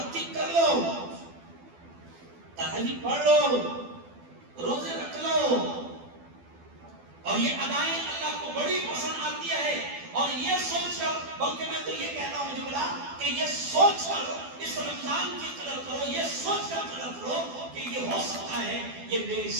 کر لو، تہجد پڑھ لو، روزے رکھ لو. اور یہ ادائیں اللہ کو بڑی پسند آتی ہے. اور یہ سوچ کر، بلکہ میں تو یہ کہتا ہوں جملہ کہ یہ سوچ کر اس رمضان کی قدر کرو، یہ سوچ کر قدر کرو کہ یہ ہو سکتا ہے یہ میری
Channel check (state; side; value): late; left; 12 ms